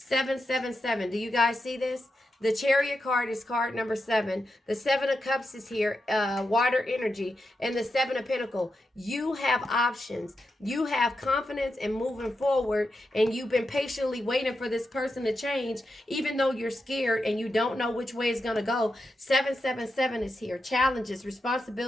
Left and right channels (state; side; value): normal; both; correlation 0.87